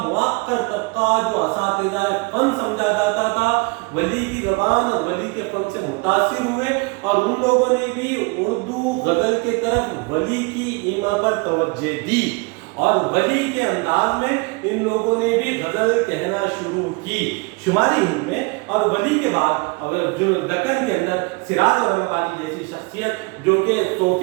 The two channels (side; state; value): left; quieter; 27.8 dB